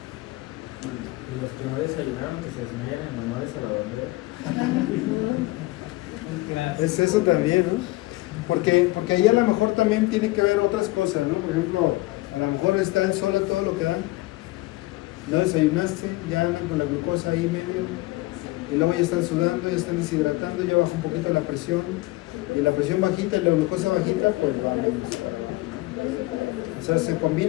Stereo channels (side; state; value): right; quieter; 20.2 dB